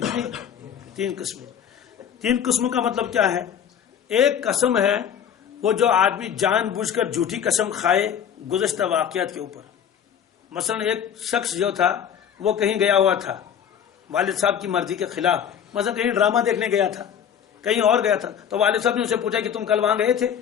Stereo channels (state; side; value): quieter; right; 8.6 dB